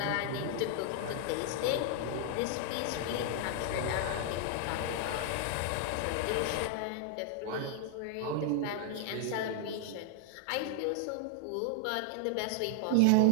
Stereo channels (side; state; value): both; different; correlation 0.00